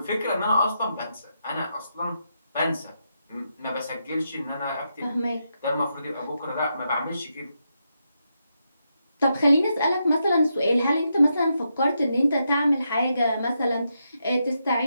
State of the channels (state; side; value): inverted; both; correlation -0.83